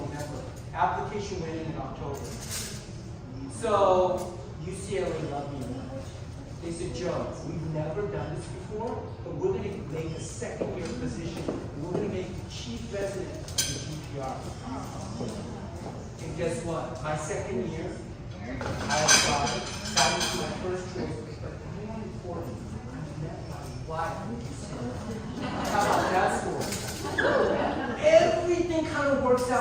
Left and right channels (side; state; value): both; identical; correlation 1.00